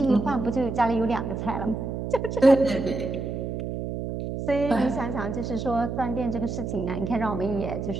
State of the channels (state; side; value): noise; right; hum, 4 dB below the sound